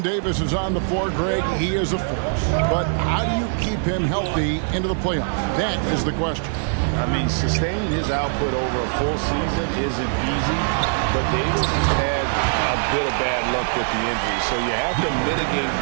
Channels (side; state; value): left; silent; digital silence